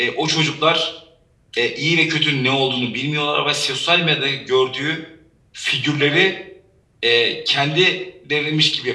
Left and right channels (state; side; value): identical; both; correlation 1.00